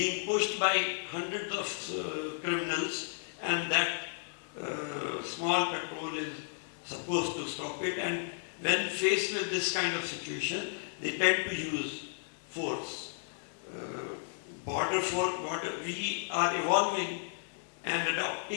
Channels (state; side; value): silent; right; digital silence